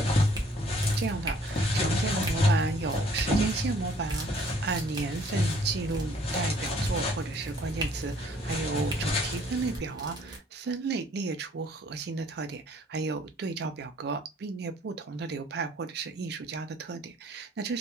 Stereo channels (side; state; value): both; normal; correlation 0.59